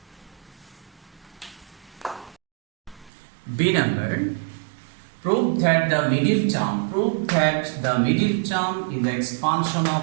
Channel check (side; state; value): left; drops out; at 3.1 s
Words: B number. Prove that the middle term in the expansion